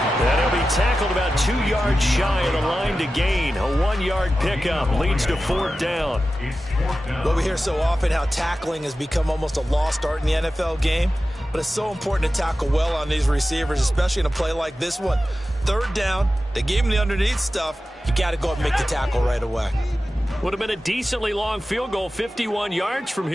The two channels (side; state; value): both; normal; correlation 0.94